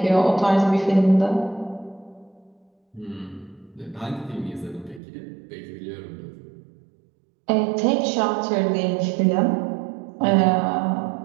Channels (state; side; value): drops out; left; at 5.0 s